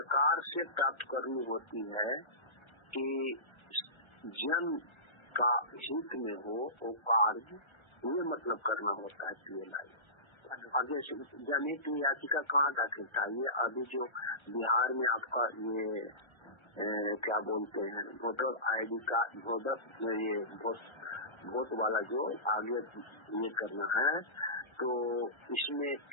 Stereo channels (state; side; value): late; right; 1.3 ms